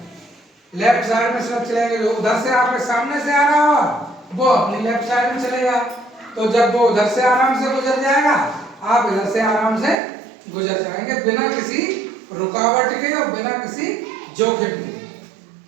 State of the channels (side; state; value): left; drops out; at 10.0 s